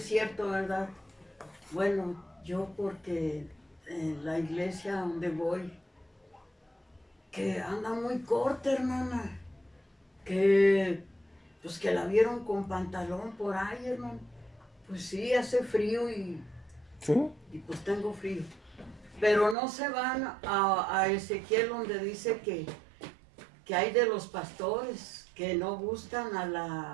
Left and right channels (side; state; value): left; drops out; at 19.6 s